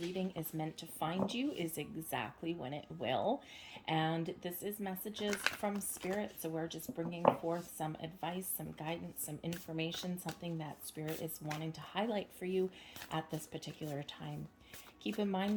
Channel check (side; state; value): both; identical; correlation 1.00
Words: is meant to find you is exactly when it will. And this is messages from Spirit. So we're just bringing forth some advice, some guidance, some information, something that Spirit is wanting to highlight for you at this particular time. Keep in mind